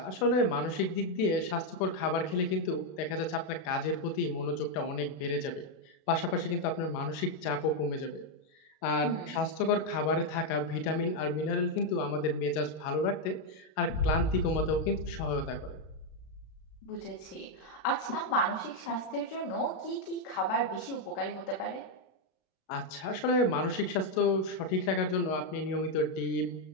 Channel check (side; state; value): right; late; 32 ms